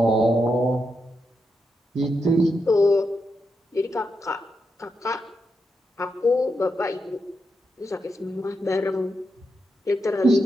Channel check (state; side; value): normal; both; correlation 0.84